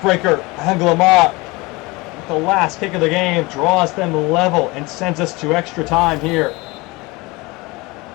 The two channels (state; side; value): quieter; right; 23.3 dB